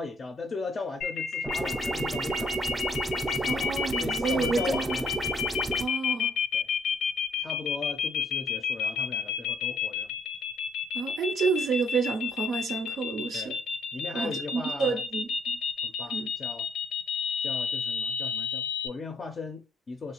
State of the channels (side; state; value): both; normal; correlation 0.67